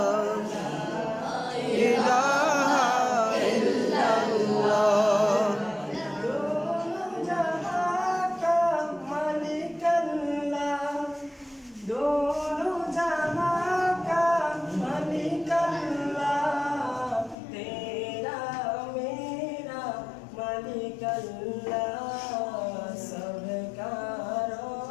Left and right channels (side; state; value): right; drops out; at 17.4 s